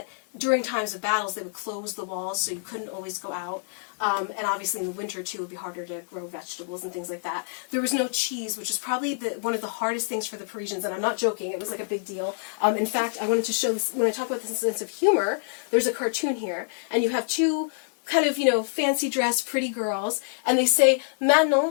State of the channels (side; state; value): right; silent; 60 dB below the other